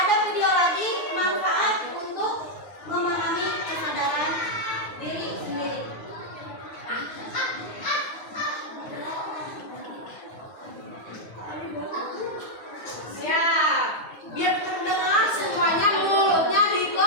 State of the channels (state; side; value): late; right; 9.6 ms